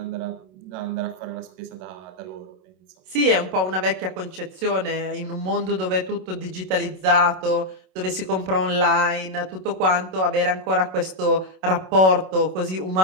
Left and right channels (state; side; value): late; left; 27 ms